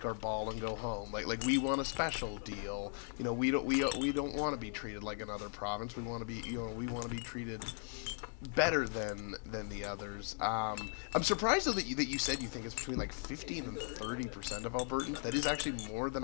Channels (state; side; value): silent; right; 52 dB below the other